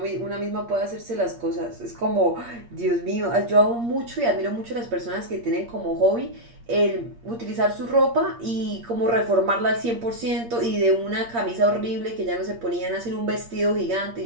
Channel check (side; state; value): left; late; 8.6 ms